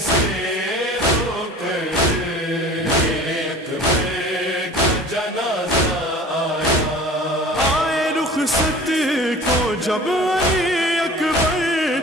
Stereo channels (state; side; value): normal; both; correlation 0.42